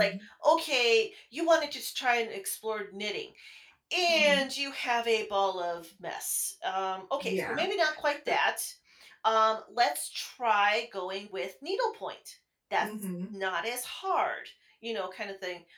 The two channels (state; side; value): identical; both; correlation 1.00